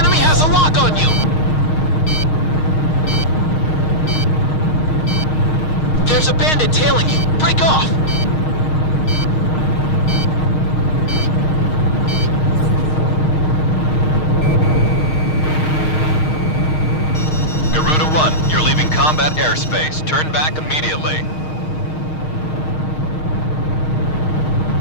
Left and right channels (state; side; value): late; right; 6.4 ms